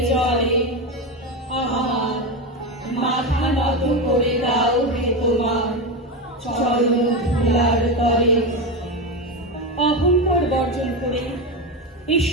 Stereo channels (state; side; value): normal; both; correlation 0.15